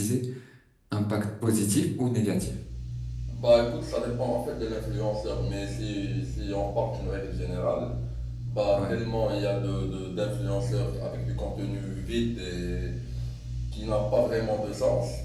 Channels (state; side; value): identical; both; correlation 1.00